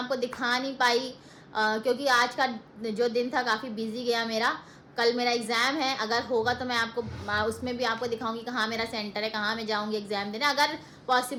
दिखा नहीं पाई, क्योंकि आज का जो दिन था काफ़ी बिजी गया मेरा। कल मेरा एग्ज़ाम है, अगर होगा तो मैं आपको उसमें भी आपको दिखाऊंगी कहाँ मेरा सेंटर है, कहाँ मैं जाऊंगी एग्ज़ाम देने, अगर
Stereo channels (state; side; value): identical; both; correlation 1.00